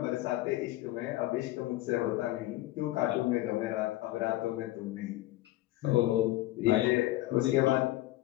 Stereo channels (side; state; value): right; quieter; 16.7 dB